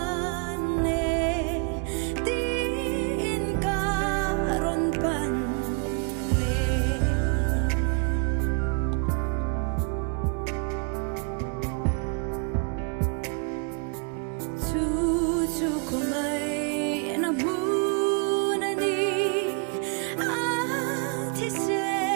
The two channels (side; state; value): left; quieter; 36.5 dB